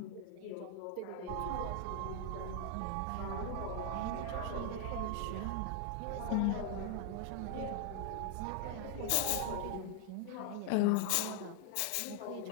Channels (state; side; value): different; both; correlation 0.00